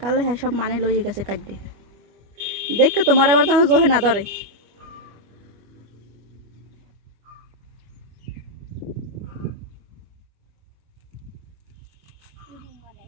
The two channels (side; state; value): left; late; 25 ms